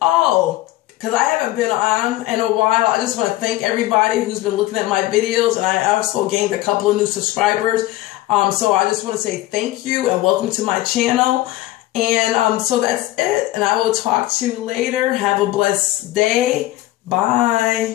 Oh, because I haven't been on in a while, I just want to thank everybody who's been looking at my videos. And I also gained a couple of new subscribers. So I just want to say thank you and welcome to my channel. And so that's it. And I will talk to you later. Have a blessed day.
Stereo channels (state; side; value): quieter; right; 16.4 dB